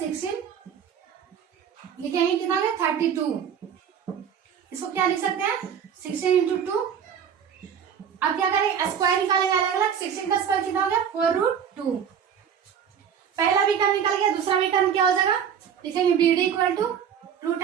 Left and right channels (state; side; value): quieter; left; 8.0 dB